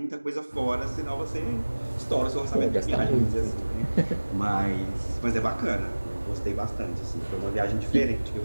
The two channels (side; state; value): both; inverted; correlation -1.00